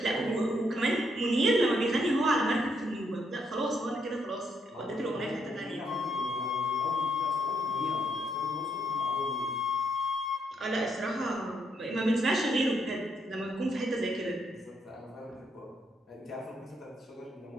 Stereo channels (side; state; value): both; normal; correlation 0.75